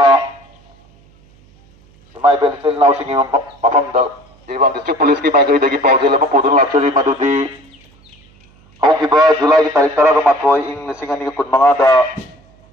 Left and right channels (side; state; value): right; noise; hum, 30 dB below the sound